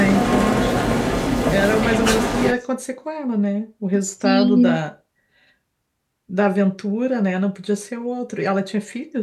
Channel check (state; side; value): identical; both; correlation 1.00